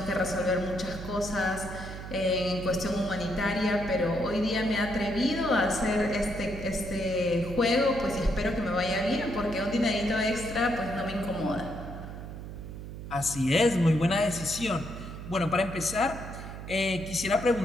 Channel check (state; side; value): noise; right; hum, 10 dB below the sound